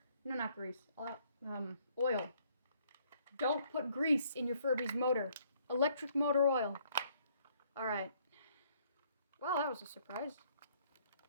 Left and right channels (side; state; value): both; inverted; correlation -0.65